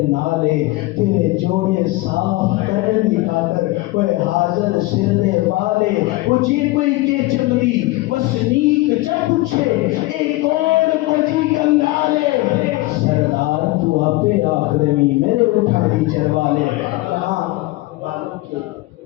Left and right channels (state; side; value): quieter; right; 20.2 dB